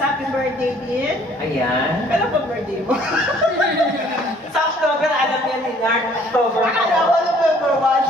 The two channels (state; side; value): normal; both; correlation 0.59